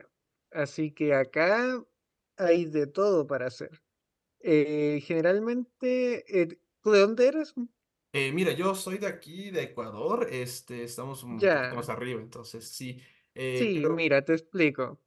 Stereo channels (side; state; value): both; identical; correlation 1.00